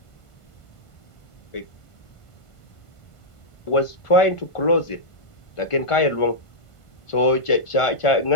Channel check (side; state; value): right; late; 1.5 ms